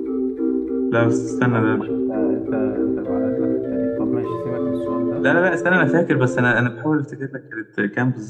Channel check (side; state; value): both; identical; correlation 1.00